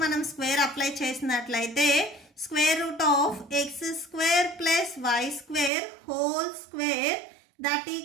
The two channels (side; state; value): left; drops out; at 5.7 s